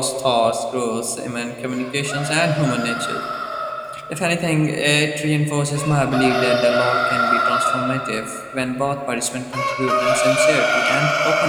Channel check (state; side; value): identical; both; correlation 1.00